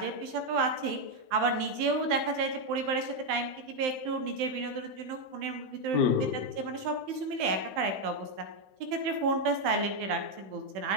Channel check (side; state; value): left; late; 15 ms